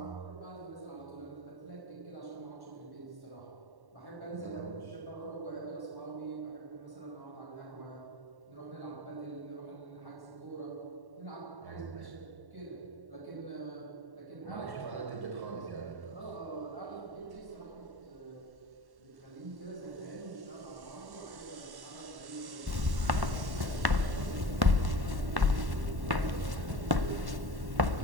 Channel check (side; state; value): left; late; 1.1 ms